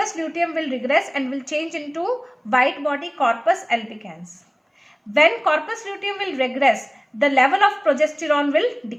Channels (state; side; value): identical; both; correlation 1.00